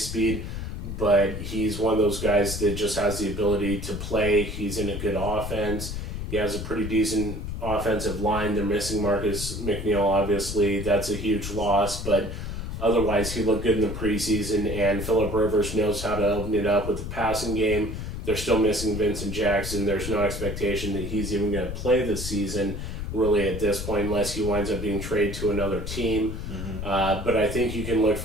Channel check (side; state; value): left; noise; rumble, 6 dB below the sound